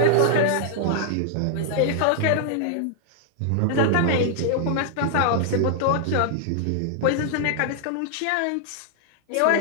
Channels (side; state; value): both; different; correlation -0.01